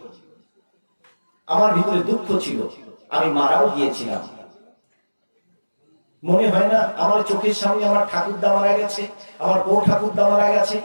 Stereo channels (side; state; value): both; inverted; correlation -1.00